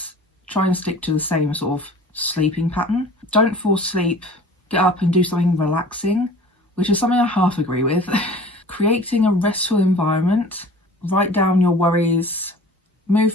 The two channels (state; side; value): normal; both; correlation 0.44